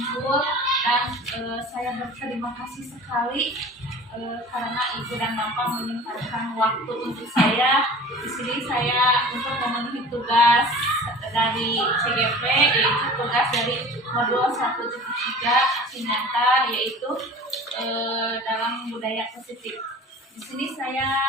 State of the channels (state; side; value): normal; both; correlation 0.41